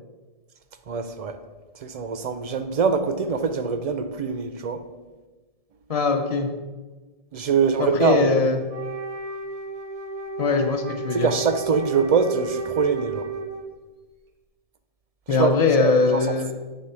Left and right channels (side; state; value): left; late; 1.7 ms